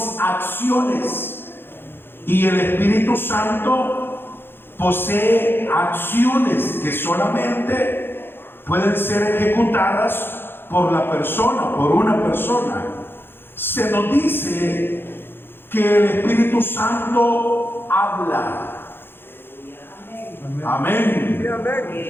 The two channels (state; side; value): late; right; 0.10 ms